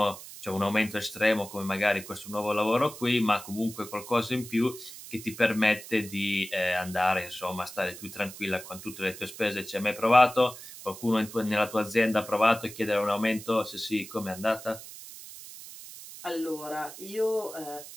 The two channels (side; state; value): right; noise; hiss, 14 dB below the sound